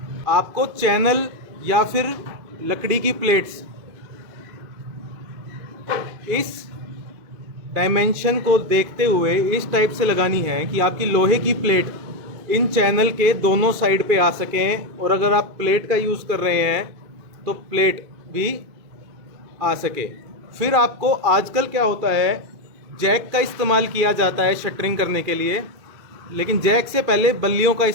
आपको चैनल या फिर लकड़ी की प्लेट्स इस डायमेंशन को देखते हुए इस टाइप से लगानी है कि आपकी लोहे की प्लेट इन चैनल के दोनों साइड पे आ सकें, और अगर आप प्लेट का यूज़ कर रहे हैं तो प्लेट भी आ सके। फिर आपको आजकल क्या होता है, जैक का इस्तेमाल किया जाता है शटरिंग करने के लिए, लेकिन जैक से पहले बल्लियों का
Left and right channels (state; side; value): late; left; 2.6 ms